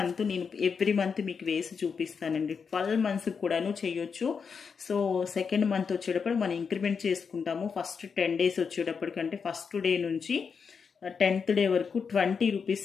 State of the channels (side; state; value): right; quieter; 5.9 dB